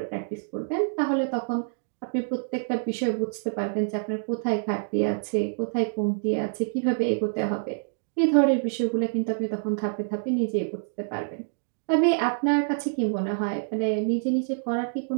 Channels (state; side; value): silent; left; digital silence